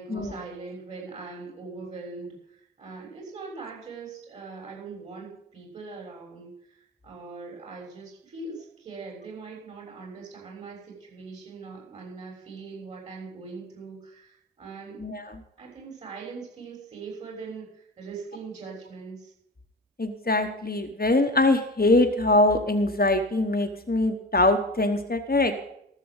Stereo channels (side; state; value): both; normal; correlation 0.30